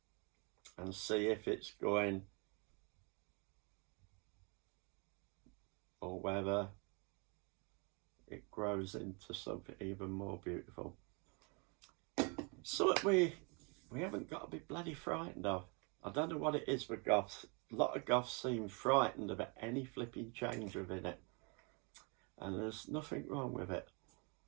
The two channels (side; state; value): left; quieter; 32.9 dB